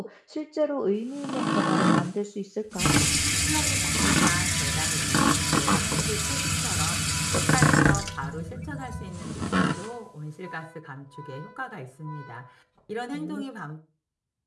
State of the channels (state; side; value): identical; both; correlation 1.00